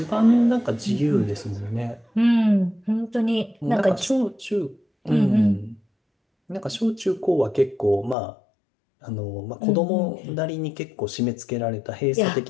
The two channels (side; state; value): right; drops out; at 8.2 s